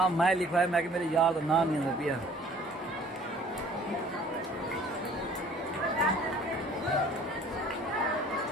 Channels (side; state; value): both; normal; correlation 0.52